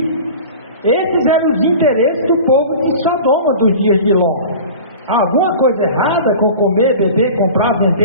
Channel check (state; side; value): inverted; both; correlation -0.38